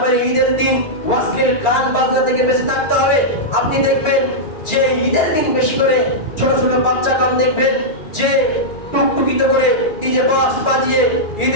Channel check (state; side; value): late; right; 2.4 ms